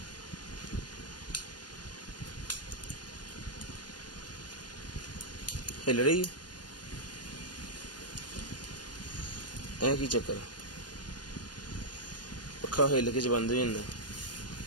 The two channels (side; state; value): right; late; 0.69 ms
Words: हिल रही है की चक्कर, पक्का हिल के बंद हो जाता।